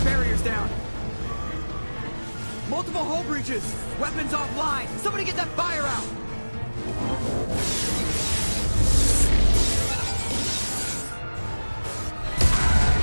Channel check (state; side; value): inverted; both; correlation -1.00